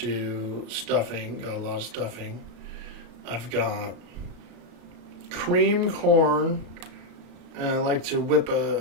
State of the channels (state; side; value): late; left; 34 ms